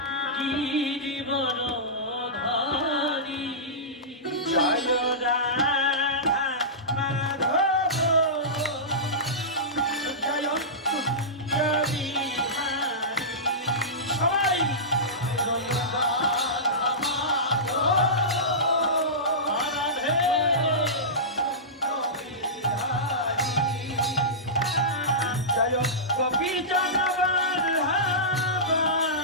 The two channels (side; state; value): both; normal; correlation -0.17